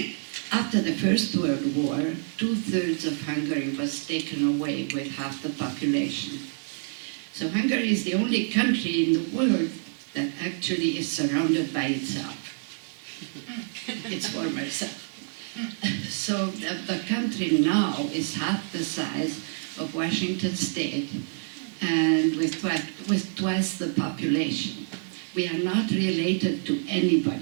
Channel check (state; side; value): silent; left; digital silence